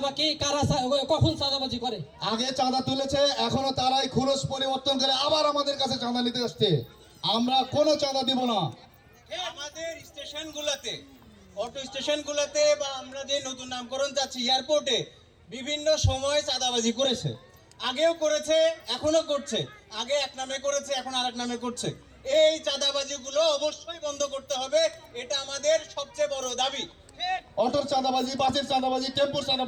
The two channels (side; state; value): both; identical; correlation 1.00